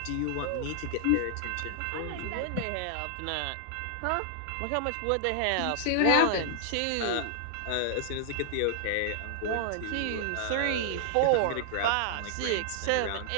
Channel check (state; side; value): different; both; correlation -0.01